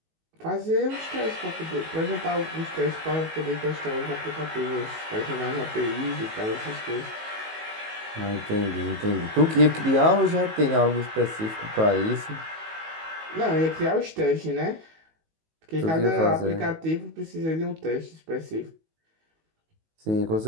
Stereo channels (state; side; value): late; left; 19 ms